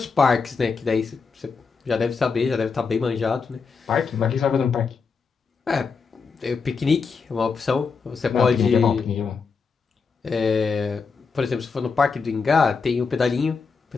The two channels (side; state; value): right; quieter; 5.1 dB